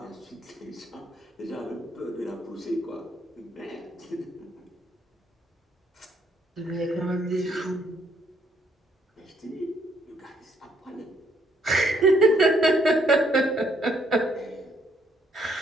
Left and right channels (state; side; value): normal; both; correlation 0.69